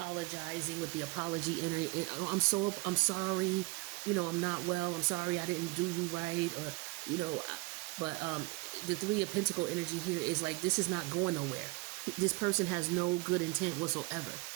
with the apology energy. I'm sorry. I'm not well. I'm sorry I didn't do you right. Or, but the Three of Pentacle energy here is like, this is not going nowhere. This person has no good intent whatsoever.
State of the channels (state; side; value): quieter; left; 24.8 dB